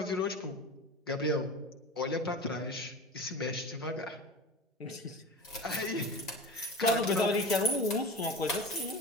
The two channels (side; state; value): both; normal; correlation 0.31